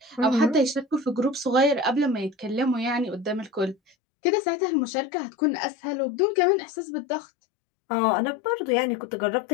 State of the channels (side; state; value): right; drops out; at 4.0 s